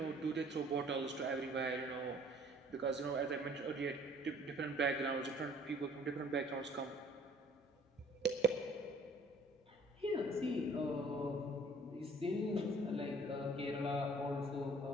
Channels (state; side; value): normal; both; correlation 0.55